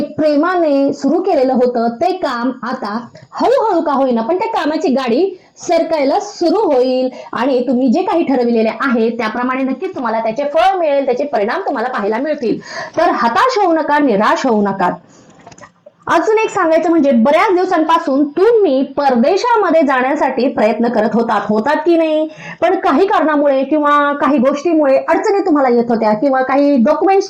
प्रेमाने सुरू केलेलं होतं, ते काम आता हळूहळू का होईना पण त्या कामाची गाडी सरकायला सुरू होईल आणि तुम्ही जे काही ठरविलेले आहे त्याप्रमाणे नक्कीच तुम्हाला त्याचे फळ मिळेल, त्याचे परिणाम तुम्हाला पाहायला मिळतील. तर हताश होऊ नका, निराश होऊ नका. अजून एक सांगायचं म्हणजे बऱ्याच दिवसांपासून तुम्ही परदेशामध्ये जाण्यासाठी प्रयत्न करत होतात की नाही, पण काही कारणामुळे किंवा काही गोष्टीमुळे अडचणी तुम्हाला येत होत्या किंवा काही डॉक्युमेंट्स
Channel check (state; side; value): identical; both; correlation 1.00